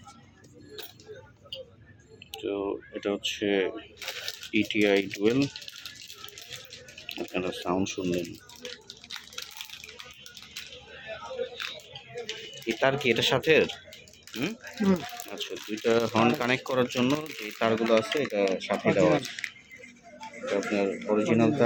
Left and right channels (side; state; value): both; identical; correlation 1.00